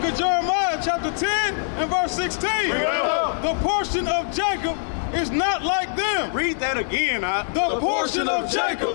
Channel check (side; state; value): right; silent; 63 dB below the other